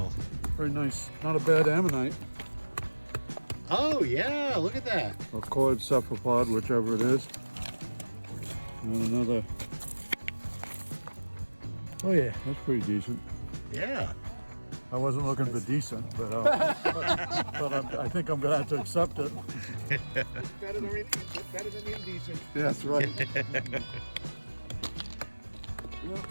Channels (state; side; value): inverted; both; correlation -1.00